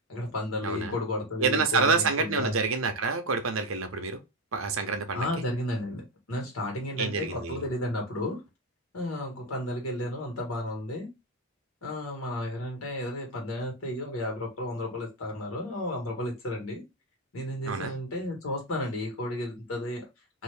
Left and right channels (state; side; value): normal; both; correlation 0.12